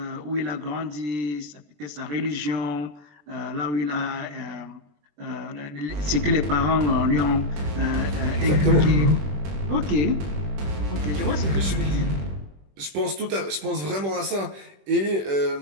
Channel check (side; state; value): left; late; 21 ms